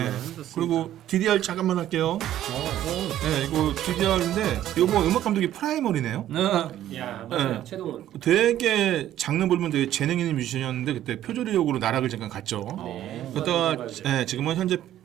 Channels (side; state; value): left; quieter; 12.3 dB